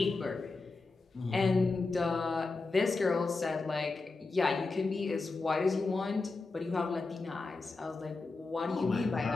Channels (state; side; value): quieter; right; 3.7 dB